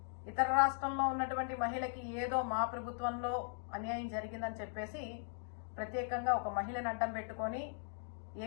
ఇతర రాష్ట్రంలో ఉన్నటువంటి మహిళకి ఏదో మా ప్రభుత్వంలో అన్యాయం జరిగిందని చెప్పేసి ప్రత్యేకంగా ఒక మహిళను అడ్డం పెట్టుకొని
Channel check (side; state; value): right; silent; digital silence